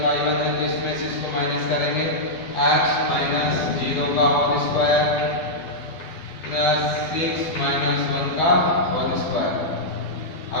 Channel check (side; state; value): right; late; 12 ms